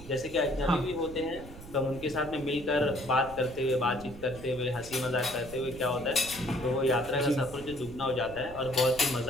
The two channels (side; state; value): right; noise; rumble, 16 dB below the sound